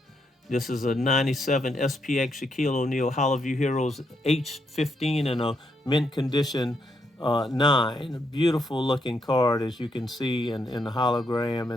This is a 97 SPX Shaquille O'Neal Hollowview Heroes H15 and a mint condition 9. A beautiful looking card, as you can see in the hologram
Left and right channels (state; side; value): normal; both; correlation 0.78